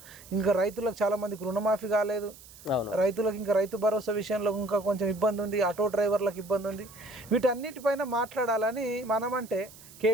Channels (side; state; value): right; noise; hiss, 20 dB below the sound